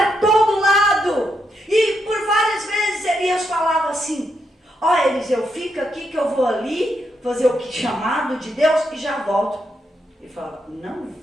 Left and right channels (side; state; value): both; normal; correlation 0.81